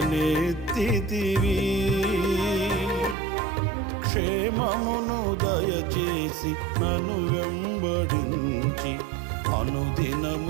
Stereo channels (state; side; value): drops out; left; at 3.2 s